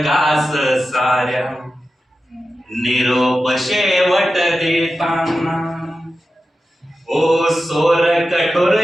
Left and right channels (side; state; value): both; normal; correlation 0.92